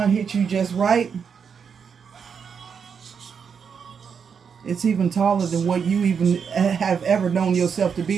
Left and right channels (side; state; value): left; quieter; 6.6 dB